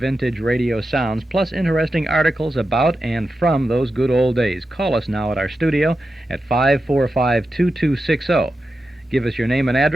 radio sounds, plus interesting articles about and from those good old days. Call us now at our studio at 545-2260. Give us your name and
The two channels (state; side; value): normal; both; correlation 0.90